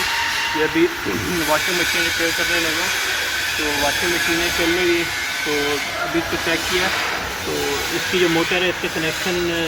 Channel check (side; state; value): both; identical; correlation 1.00